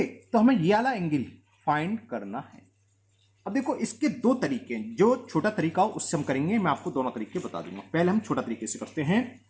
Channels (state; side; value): identical; both; correlation 1.00